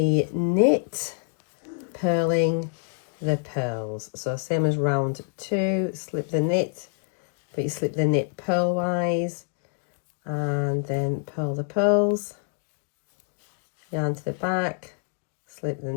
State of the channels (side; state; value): right; silent; 60 dB below the other